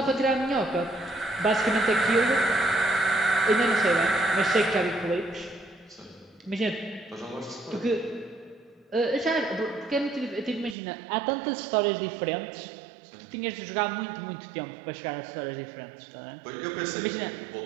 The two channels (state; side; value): drops out; left; at 10.8 s